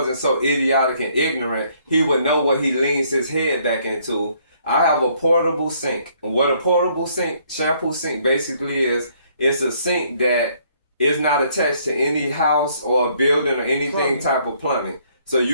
so idiotic and ignorant, he would know what he leans his head back into. I have a portable sink. And what a portable sink, shampoo sink basically is, it's a sink that is not attached to any house or building or anything type of plumbing. So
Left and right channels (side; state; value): both; inverted; correlation -0.65